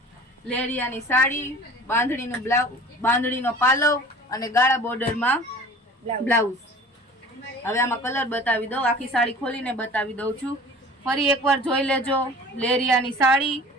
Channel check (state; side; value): normal; both; correlation 0.43